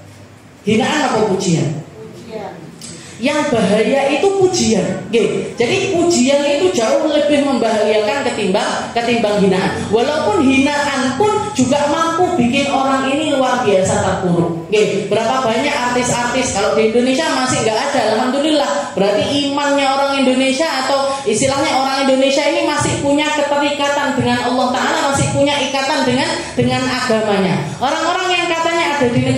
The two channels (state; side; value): identical; both; correlation 1.00